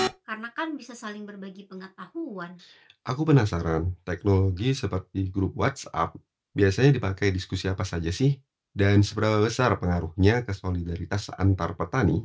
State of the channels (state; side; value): identical; both; correlation 1.00